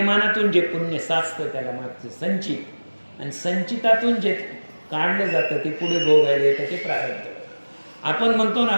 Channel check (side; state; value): both; inverted; correlation -1.00